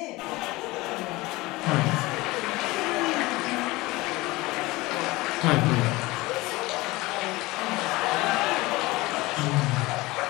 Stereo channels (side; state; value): right; quieter; 20.8 dB